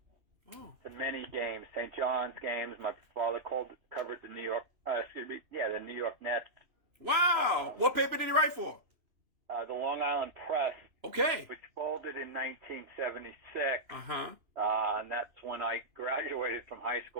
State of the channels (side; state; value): left; late; 2.9 ms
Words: to many games, St. John's games. My father covered the New York Nets. Wow. What paper did he write for? The Long Island Press. Okay. Which folded in 1976. Uh-huh. And that's when I graduated from high